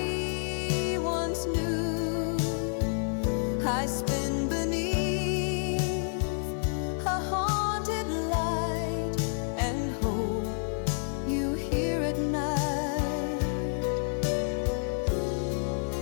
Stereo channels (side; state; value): right; silent; 58 dB below the other